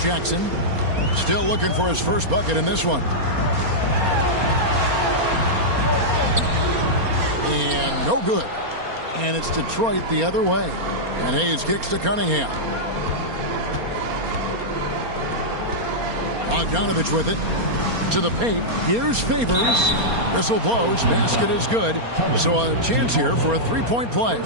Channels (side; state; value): left; late; 4.3 ms